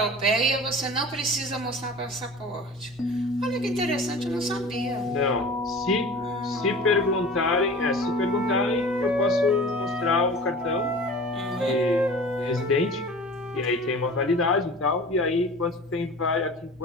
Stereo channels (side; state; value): both; normal; correlation 0.39